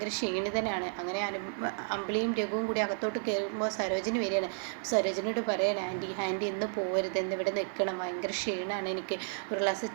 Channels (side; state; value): left; silent; 56 dB below the other